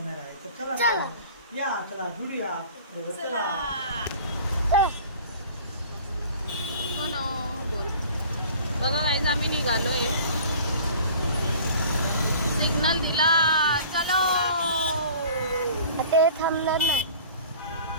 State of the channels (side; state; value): both; inverted; correlation -0.45